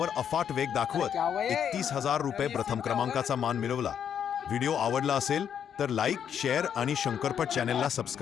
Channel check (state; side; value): quieter; right; 8.5 dB